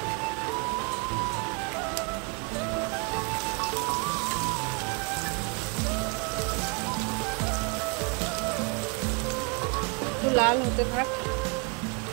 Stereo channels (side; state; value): left; quieter; 32.7 dB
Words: একটু লাল হতে থাক।